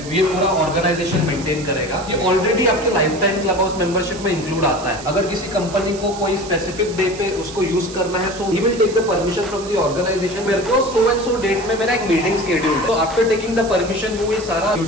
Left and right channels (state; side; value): noise; right; hiss, 15 dB below the sound